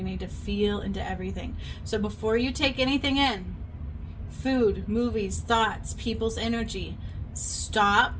need to feel into everything. So before you take anything in, food, movies, thoughts, people's energy,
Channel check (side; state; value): both; identical; correlation 1.00